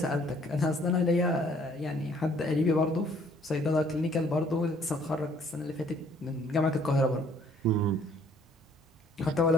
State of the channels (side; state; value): both; normal; correlation 0.61